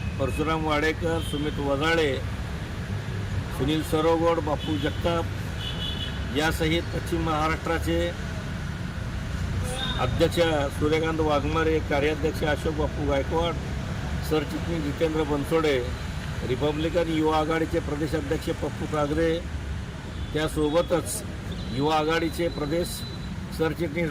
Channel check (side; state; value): both; identical; correlation 1.00